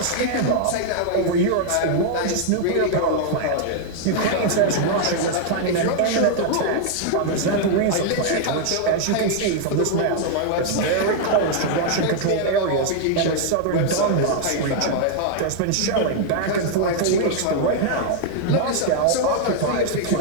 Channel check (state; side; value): different; both; correlation 0.00